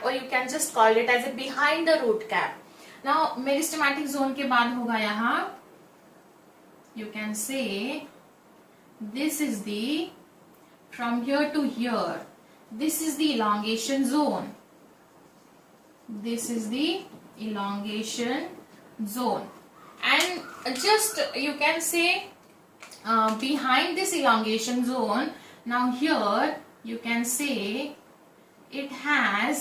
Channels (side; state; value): both; identical; correlation 1.00